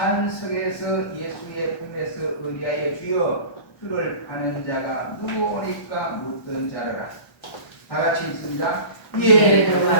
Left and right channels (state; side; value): late; right; 1.1 ms